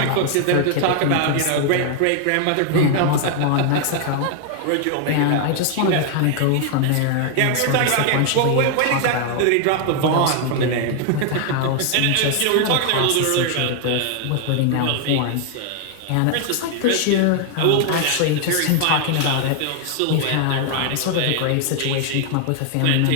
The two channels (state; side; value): different; both; correlation 0.00